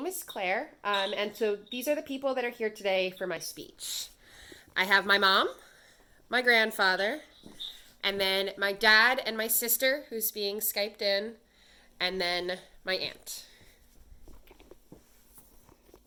is Claire, and so these are the people that are here today for my speech. I have my mom, my grandfather, and then my dad and my sister, who's being Skyped in, and then my aunt.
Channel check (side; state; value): both; identical; correlation 1.00